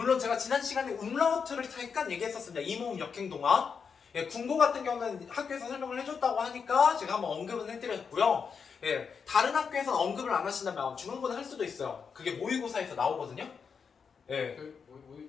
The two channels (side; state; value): right; quieter; 6.1 dB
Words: 제가 지난 시간에 음라우트를 잠깐 얘기했었습니다. 이모음 역행동화. 예, 군고 같은 경우는 학교에서 설명을 해줬다고 하니까 제가 한번 언급은 해드렸고요. 예, 다른 학교에서는 언급을 안 하신다면 중간고는 할 수도 있어요. 그게 모의고사에서 나오거든요. 예.